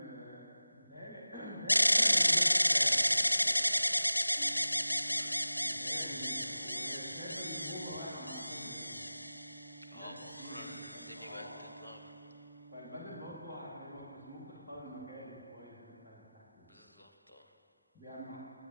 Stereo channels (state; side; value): inverted; both; correlation -0.97